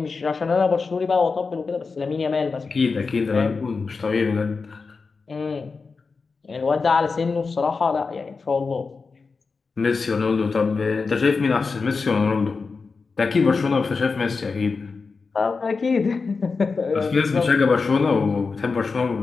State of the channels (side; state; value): right; quieter; 4.6 dB